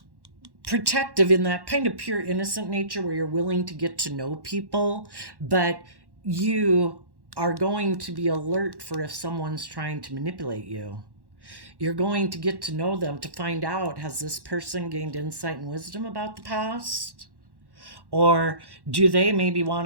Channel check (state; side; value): late; left; 1.1 ms